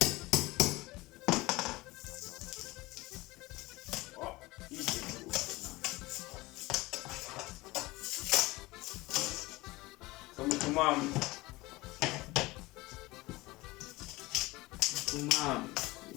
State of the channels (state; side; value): quieter; right; 21.0 dB